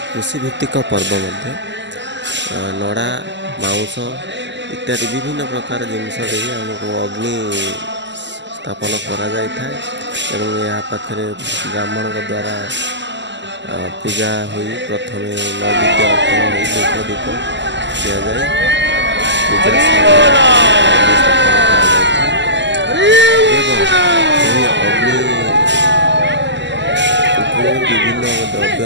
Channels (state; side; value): late; left; 0.53 ms